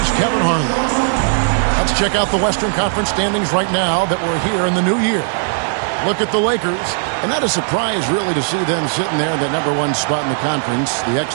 Kevin Harlan. Let's check out the Western Conference standings right now that we're here in the new year. Look at the Lakers, and not a surprise, really, to see them sitting there in that #1 spot in the conference. The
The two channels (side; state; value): left; silent; 68 dB below the other